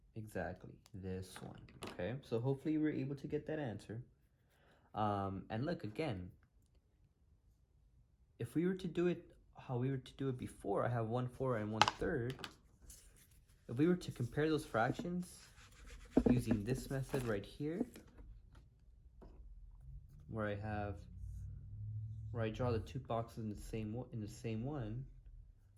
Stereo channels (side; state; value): both; identical; correlation 1.00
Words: Exactly, this one, okay? So hopefully you were able to get that answer. And look, again, if we were to do it how we were to do it before, I have 1/4 and 1/3. If we were to compare those fractions using this method right here, where I draw the 2 boxes in the same one,